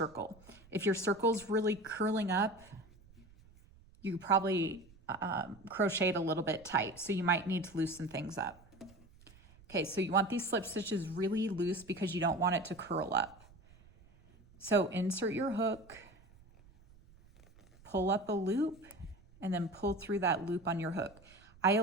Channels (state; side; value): noise; right; rumble, 25 dB below the sound